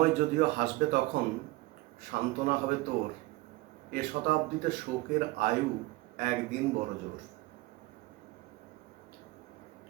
যদিও হাসবে তখন, সান্ত্বনা হবে তোর, এ শতাব্দীতে শোকের আয়ু একদিন বড় জোর।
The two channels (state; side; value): quieter; left; 20.2 dB